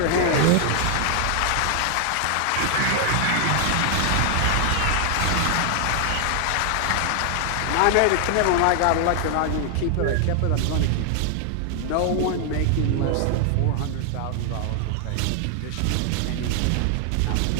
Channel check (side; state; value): both; different; correlation 0.00